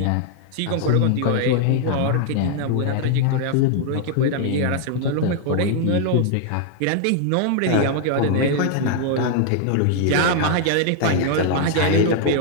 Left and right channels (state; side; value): different; both; correlation 0.00